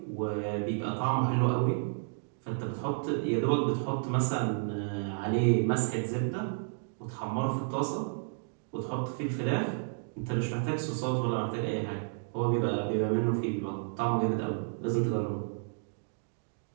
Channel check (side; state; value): left; silent; digital silence